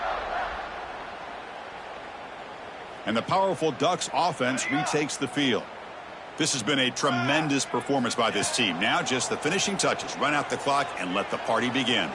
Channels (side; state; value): both; identical; correlation 1.00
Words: And the powerful Ducks offense retakes the field. This has been a tremendous performance by this team. Now just the finishing touches. Run out the clock and let the party begin.